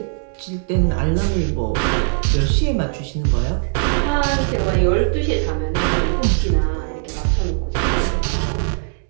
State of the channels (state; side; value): silent; left; 60 dB below the other